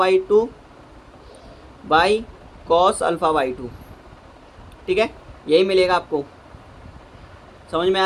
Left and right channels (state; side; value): identical; both; correlation 1.00